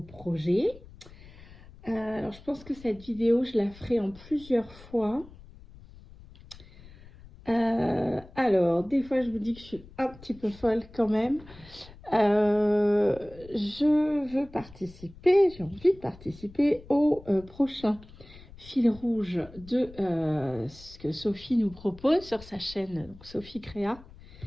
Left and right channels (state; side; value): noise; left; rumble, 20 dB below the sound